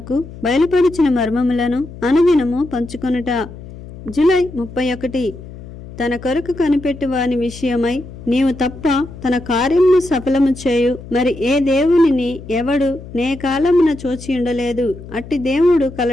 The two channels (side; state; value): left; noise; hum, 15 dB below the sound